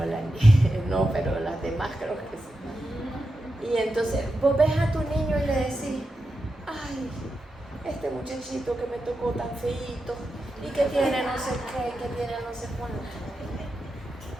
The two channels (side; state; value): both; normal; correlation 0.89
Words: no, pero las demás creo que sí. Y entonces vos ves a tu niño y le decís: ay, este muchachito que me tocó tan feíto, y que tiene no sé qué, que tiene no sé cuánto.